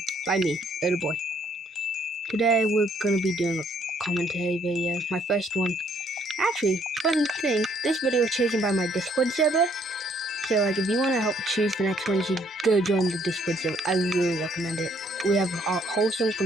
by me, Little Boy. Today we're gonna be doing a commentary video, my first one. Actually, fun thing, this video is chosen by my Discord server. So like, if you want to help choose the next one, you should go join the Discord server. I really recommend it. We have a wholesome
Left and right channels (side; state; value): both; normal; correlation 0.66